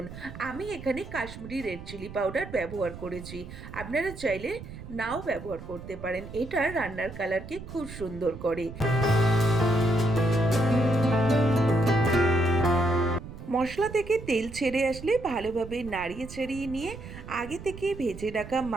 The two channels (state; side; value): noise; right; rumble, 13 dB below the sound